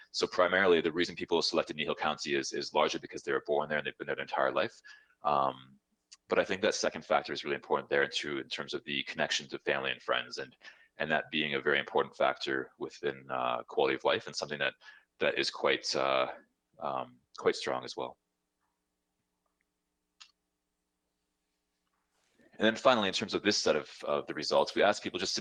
So primarily, the reason people selected Kneehill County is largely because they were born there and they've been there their entire life. But I think that second factor is really important there too, in terms of the connection to family and friends, and that being a very important factor within quality of life, and something that is quite strong as well. And then finally, in terms of this set of the results, we asked people just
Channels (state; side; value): identical; both; correlation 1.00